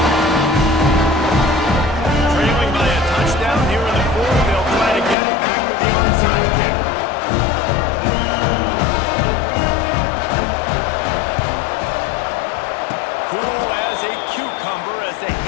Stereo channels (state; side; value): drops out; right; at 5.2 s